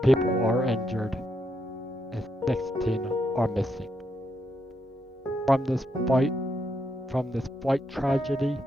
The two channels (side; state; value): both; normal; correlation 0.80